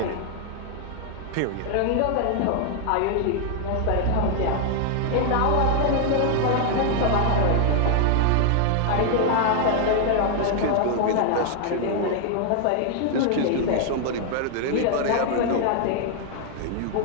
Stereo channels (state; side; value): different; both; correlation 0.00